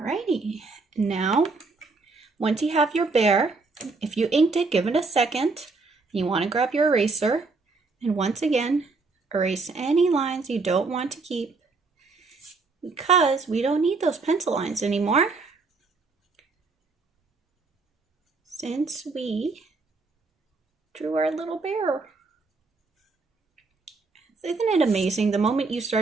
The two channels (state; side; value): quieter; left; 4.0 dB